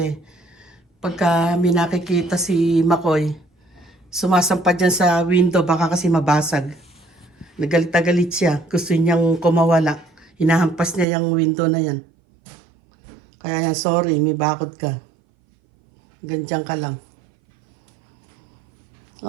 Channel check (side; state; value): left; drops out; at 11.1 s